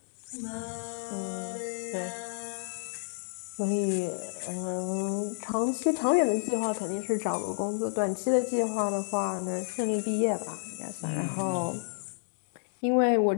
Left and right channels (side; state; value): right; silent; digital silence